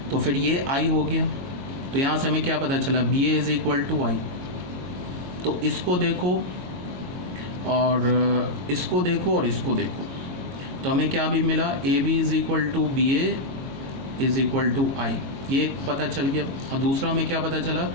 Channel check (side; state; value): left; late; 22 ms